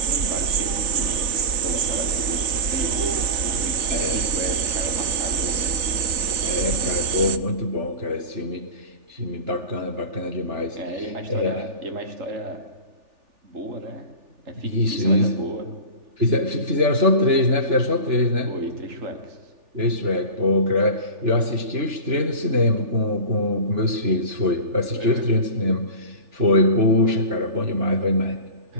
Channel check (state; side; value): late; left; 3.4 ms